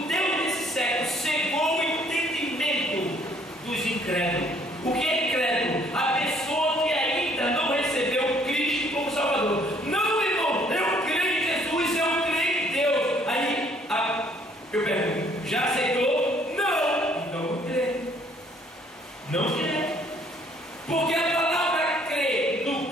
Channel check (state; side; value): normal; both; correlation 0.62